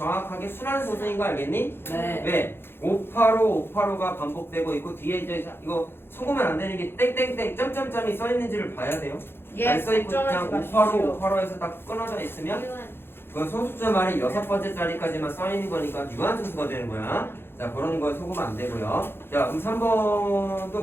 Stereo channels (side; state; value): right; late; 0.11 ms